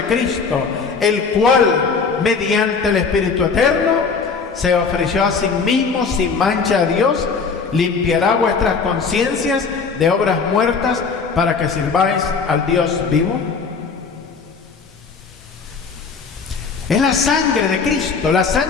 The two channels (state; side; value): quieter; right; 5.2 dB